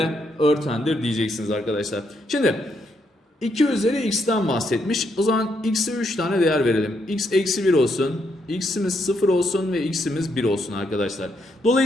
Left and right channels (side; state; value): both; normal; correlation 0.77